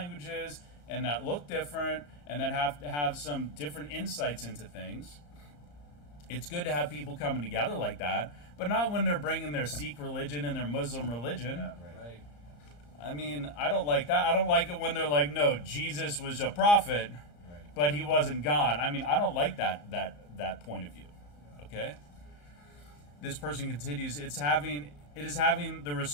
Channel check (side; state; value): right; late; 34 ms